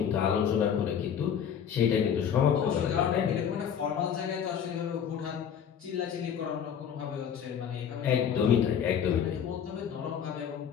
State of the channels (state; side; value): quieter; right; 8.3 dB